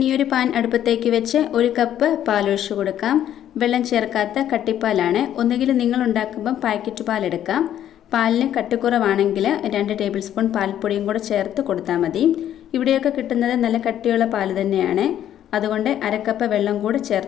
പാൻ അടുപ്പത്തേക്ക് വെച്ച് 1 കപ്പ് പാലൊഴിച്ച് കൊടുക്കാം. വെള്ളം ചേർക്കാത്ത കട്ടിപ്പാലാണ്. ഒന്നുകിൽ നിങ്ങൾ ഉണ്ടാക്കുമ്പം പാക്കറ്റ് പാൽ എടുക്കാം. പാലിന് കട്ടിക്കുറവാണെങ്കിൽ 2 ടേബിൾ സ്പൂൺ പാൽപ്പൊടിയും കൂടെ ചേർത്ത് കൊടുത്താൽ മതി. ഇവിടെയൊക്കെ കിട്ടുന്നത് നല്ല കട്ടിയുള്ള പാൽ തന്നെയാണ്. അതുകൊണ്ട് 1/2 കപ്പ് വെള്ളം കൂടെ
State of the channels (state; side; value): quieter; right; 11.0 dB